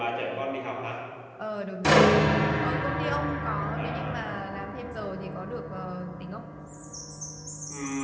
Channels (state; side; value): identical; both; correlation 1.00